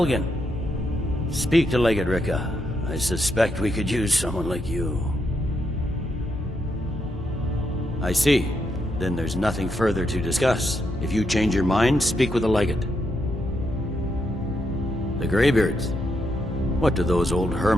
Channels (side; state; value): both; normal; correlation 0.80